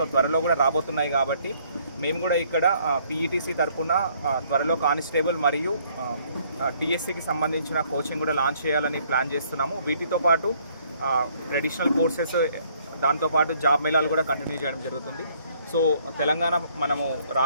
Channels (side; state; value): both; inverted; correlation -0.64